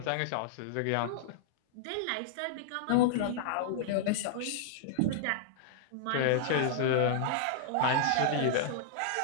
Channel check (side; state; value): both; different; correlation -0.01